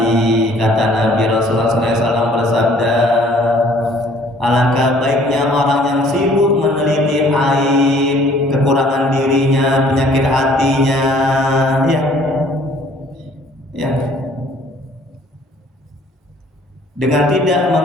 Kata Nabi Rasulullah SAW bersabda, alangkah baiknya orang yang sibuk meneliti aib, kekurangan dirinya, penyakit hatinya. Ya. Dengan tidak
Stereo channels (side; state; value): both; normal; correlation 0.57